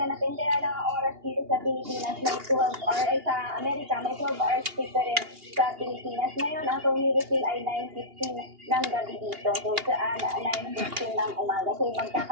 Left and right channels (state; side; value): late; left; 2.8 ms